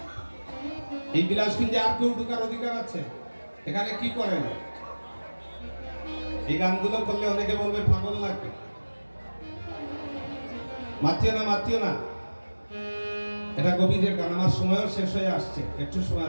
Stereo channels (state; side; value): inverted; both; correlation -1.00